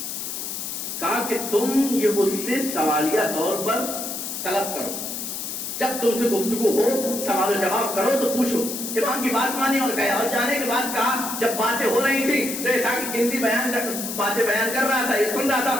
کہا کہ تم یہ اس سے سوالیہ طور پر طلب کرو، جب تم سے گفتگو ہو سوال و جواب کرو تو پوچھو. امام کی بات مانی اور گیا، اور جانے کے بعد کہا جب باتیں ہو رہی تھی تو ایسا کہ گنتی باتیں بیان کر رہا تھا، یہ سن رہا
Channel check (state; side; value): noise; left; hiss, 5 dB below the sound